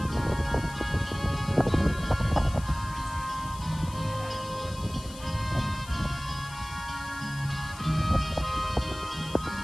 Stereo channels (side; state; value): left; noise; hiss, 17 dB below the sound